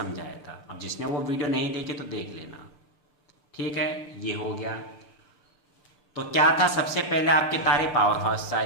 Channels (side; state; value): right; late; 6.8 ms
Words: था। अब जिसने वो वीडियो नहीं देखी तो देख लेना, ठीक है। ये हो गया। तो क्या था, सबसे पहले आपके तारे पावर हाउस से